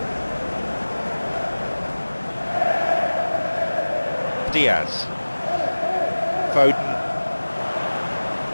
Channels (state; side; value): inverted; both; correlation -1.00